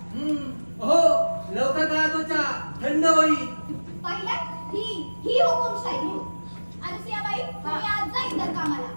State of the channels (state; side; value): inverted; both; correlation -1.00